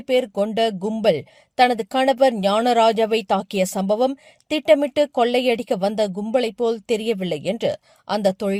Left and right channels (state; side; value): identical; both; correlation 1.00